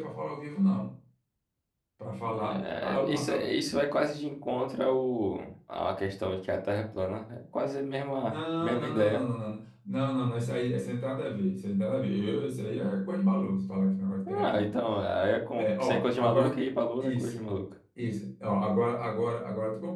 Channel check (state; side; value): identical; both; correlation 1.00